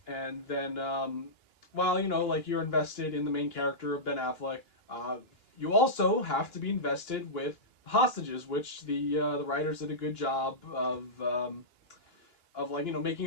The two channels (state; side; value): late; right; 2.9 ms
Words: and then while like you're invested in the main character of Ben Affleck, you also have to be invested with hostages, which the writers did a good job of like